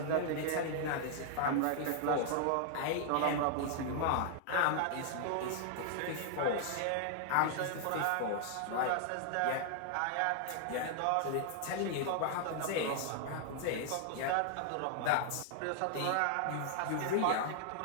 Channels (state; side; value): different; both; correlation -0.01